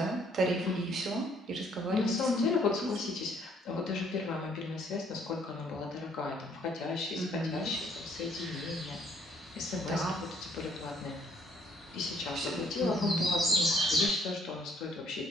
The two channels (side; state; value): both; normal; correlation 0.65